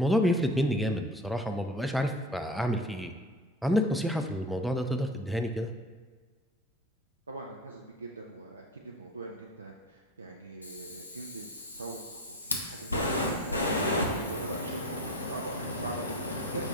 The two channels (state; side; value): normal; both; correlation 0.35